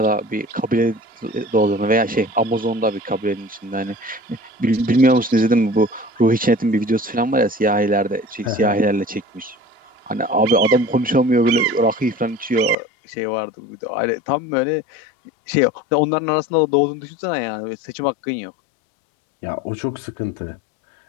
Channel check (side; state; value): right; drops out; at 12.8 s